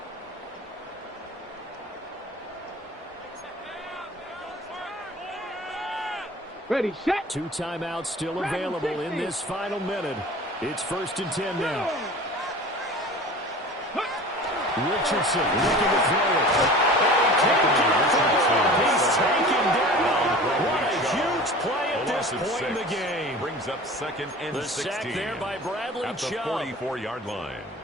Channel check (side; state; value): both; normal; correlation 0.39